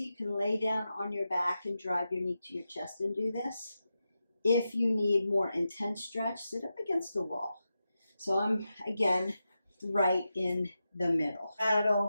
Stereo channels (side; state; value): both; inverted; correlation -0.90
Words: you can lay down on your back and drive your knee to your chest and do this. If you need more intense stretch, sit up against the wall. So I'm, again, right in the middle.